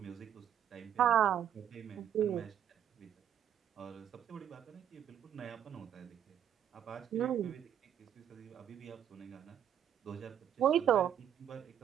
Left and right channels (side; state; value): left; quieter; 9.7 dB